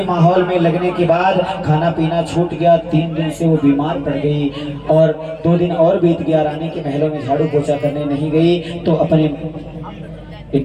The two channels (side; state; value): both; identical; correlation 1.00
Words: माहौल में लगने के बाद खाना पीना छूट गया। 3 दिन से वो बीमार पड़ गई और 2 दिन और बीत गया। रानी के महलों में झाड़ू पोछा करने नहीं गई तो अपने